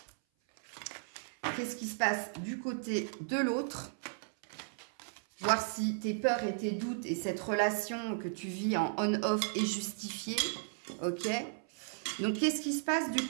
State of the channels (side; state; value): left; silent; 54 dB below the other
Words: Qu'est-ce qui se passe du côté de l'autre? Voir si tes peurs et tes doutes et cette relation que tu vis en on-off est justifiée. Ok? Donc, qu'est-ce qui se passe du